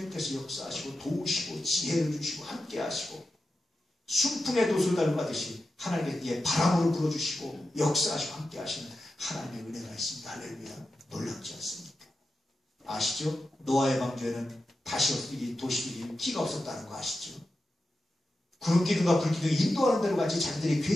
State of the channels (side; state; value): both; normal; correlation 0.90